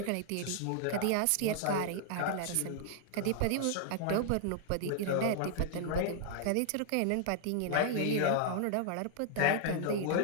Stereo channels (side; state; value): both; different; correlation -0.01